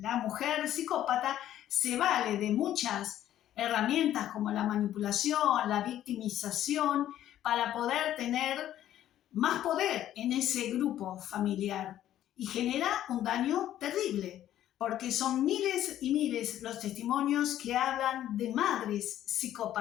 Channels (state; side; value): quieter; right; 12.1 dB